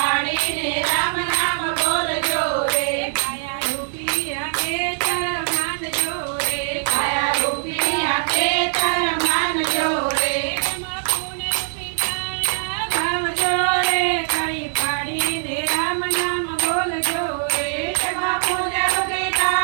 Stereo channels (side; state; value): left; silent; digital silence